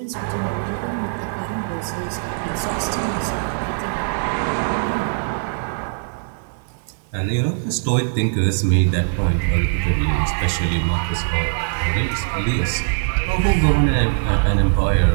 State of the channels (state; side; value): silent; left; digital silence